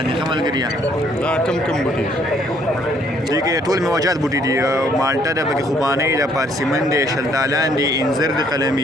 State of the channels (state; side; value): normal; both; correlation 0.65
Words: ښه ملګري دا کم بوټي دي کې ټول میوجات بوټي دي مالټه ده پکې خوبانۍ ده پارسیمن دی شلتالان دی انځر دی